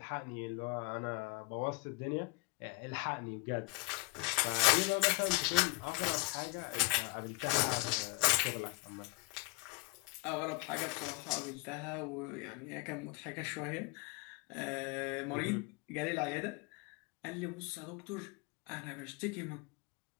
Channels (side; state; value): right; quieter; 23.5 dB